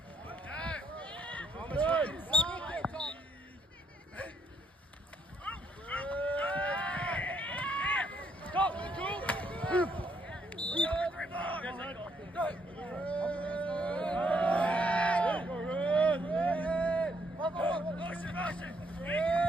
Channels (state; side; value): normal; both; correlation 0.73